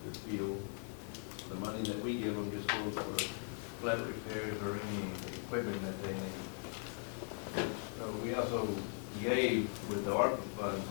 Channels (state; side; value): silent; right; 51 dB below the other